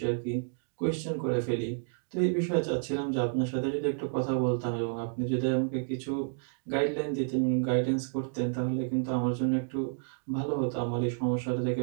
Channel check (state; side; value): silent; left; digital silence